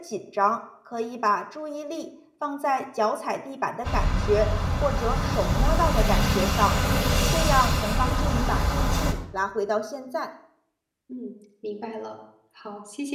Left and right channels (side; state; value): both; identical; correlation 1.00